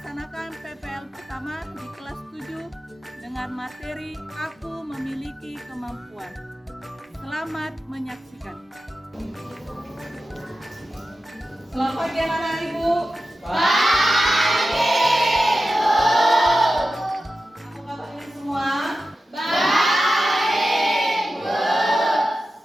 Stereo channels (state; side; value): normal; both; correlation 0.93